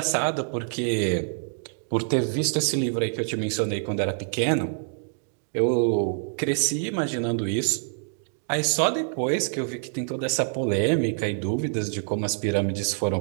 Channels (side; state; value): left; silent; digital silence